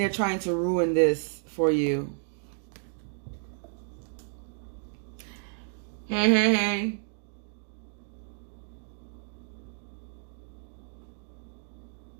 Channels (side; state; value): left; silent; digital silence